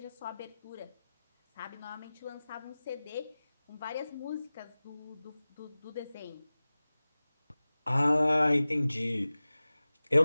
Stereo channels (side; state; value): both; inverted; correlation -0.98